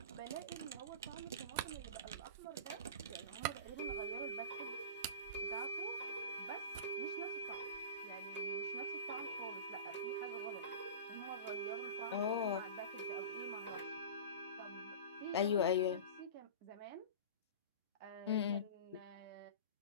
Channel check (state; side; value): inverted; both; correlation -0.32